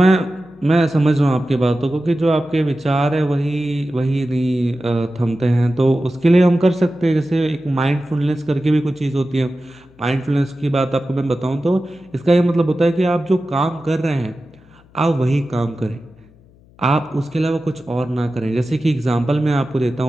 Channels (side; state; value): left; noise; hum, 28 dB below the sound